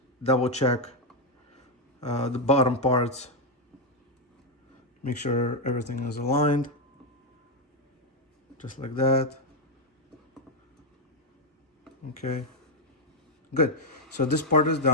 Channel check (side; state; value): both; normal; correlation 0.02